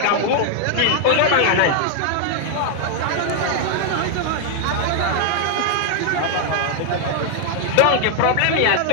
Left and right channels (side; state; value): both; different; correlation 0.00